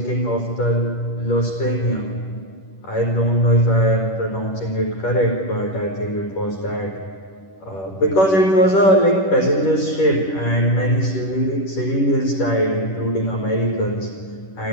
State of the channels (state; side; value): late; right; 10 ms